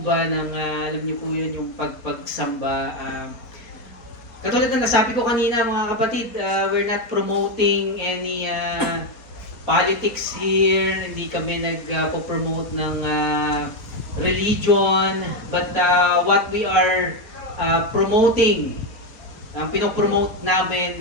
ba ng alam niyo po yun, yung pagpagsamba. Katulad ng nasabi ko kanina mga kapatid, we're not promoting any politics here, hindi kami nagpo-promote ng religion, but what we are promoting, ang pinopromote namin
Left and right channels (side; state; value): right; late; 4.2 ms